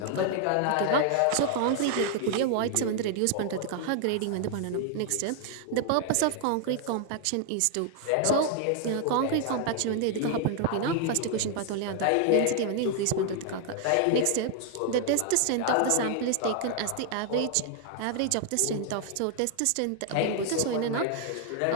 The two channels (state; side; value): different; both; correlation 0.00